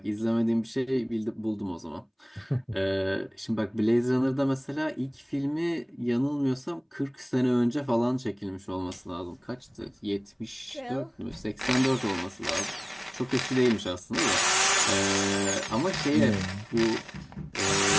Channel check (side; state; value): both; identical; correlation 1.00